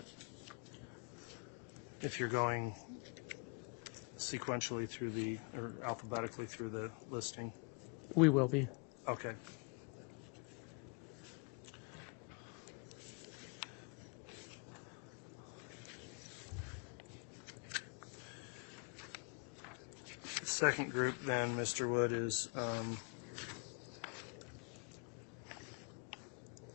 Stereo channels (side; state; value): right; quieter; 36.9 dB